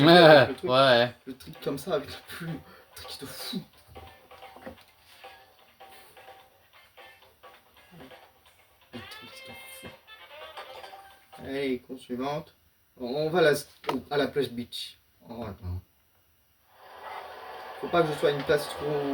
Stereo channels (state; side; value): identical; both; correlation 1.00